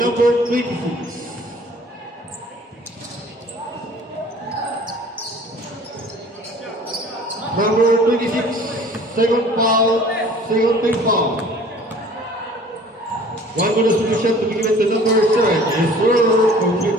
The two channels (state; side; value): normal; both; correlation 0.49